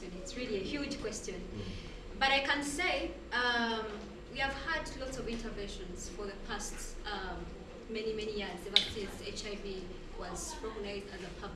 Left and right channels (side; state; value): both; identical; correlation 1.00